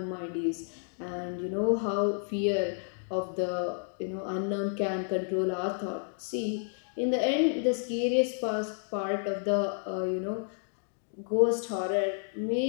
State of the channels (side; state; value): right; silent; digital silence